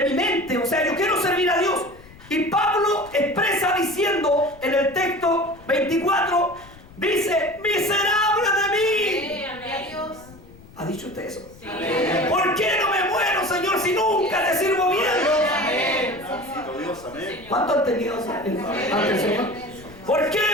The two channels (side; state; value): left; noise; rumble, 22 dB below the sound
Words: mi mente. O sea, yo quiero servir a Dios. Y Pablo expresa diciendo en el texto 24, dice, miserable de mí. ¿Ha dicho usted eso? Sí. ¿Por qué no me muero, Señor, si nunca te sirvo bien? ¿Cuánto han tenido ante el Señor? ¿Por qué